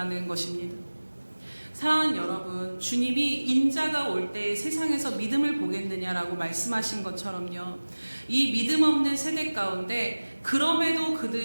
것입니다. 사랑하는 여러분, 주님이 인자가 올 때 세상에서 믿음을 보겠느냐라고 말씀하신 것처럼요, 이 믿음 없는 세대 가운데 그럼에도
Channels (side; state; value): both; inverted; correlation -1.00